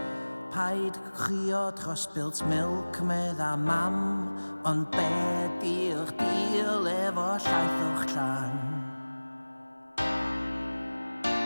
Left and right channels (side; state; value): both; inverted; correlation -1.00